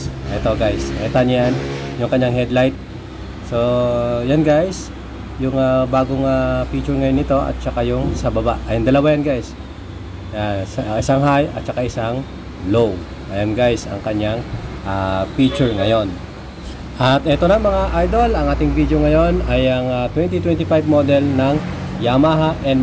Ito guys, nakita niyo yan, yung kanyang headlight. So yan guys, yung bagong feature ngayon nito at saka yung sa baba. Ayun, dalawa yan guys. Isang high at saka isang low. Ayan guys, ang kanyang feature ngayon. At ito na mga idol, ang ating video ngayon ay ang 2025 model ng Yamaha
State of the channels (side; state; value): both; identical; correlation 1.00